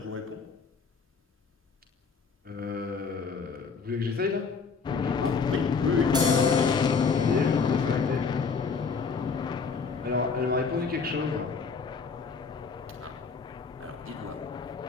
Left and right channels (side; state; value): right; quieter; 5.2 dB